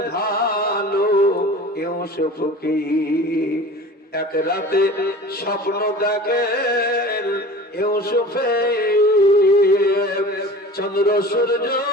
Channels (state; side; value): normal; both; correlation 0.39